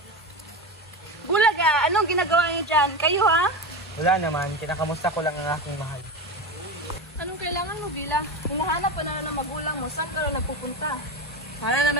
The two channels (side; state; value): both; normal; correlation 0.21